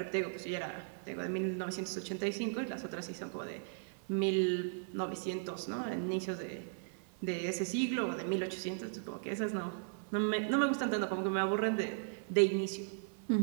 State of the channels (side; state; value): left; silent; 53 dB below the other